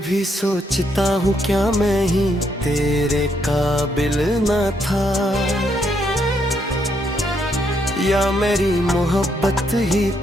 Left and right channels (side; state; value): both; normal; correlation 0.75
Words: सोचता हूँ क्या मैं ही तेरे काबिल न था, या मेरी मोहब्बत ही